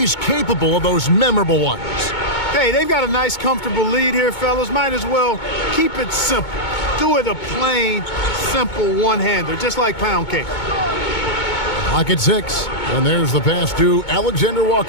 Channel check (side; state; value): right; late; 2.2 ms